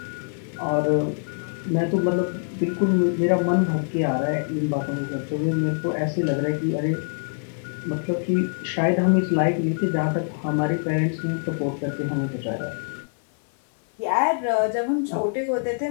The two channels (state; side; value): silent; right; 58 dB below the other